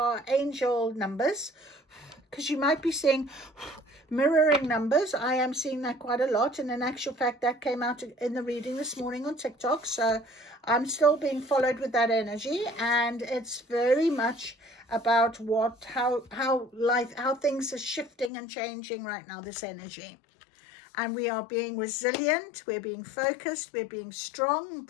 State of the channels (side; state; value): right; drops out; at 18.3 s